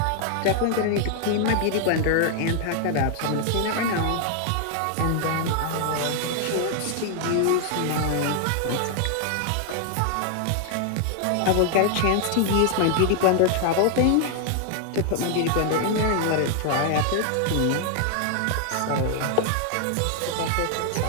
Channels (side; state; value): both; different; correlation 0.00